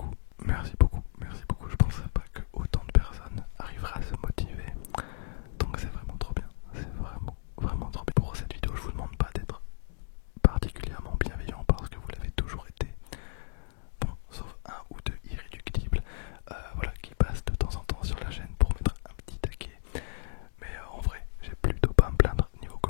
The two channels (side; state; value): right; silent; digital silence